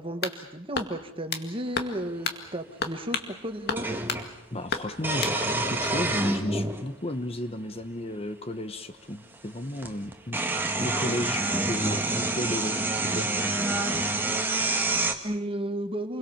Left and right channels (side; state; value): both; normal; correlation 0.34